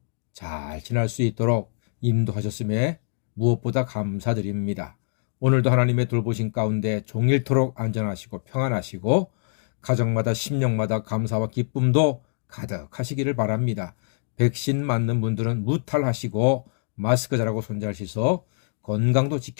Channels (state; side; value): silent; right; 62 dB below the other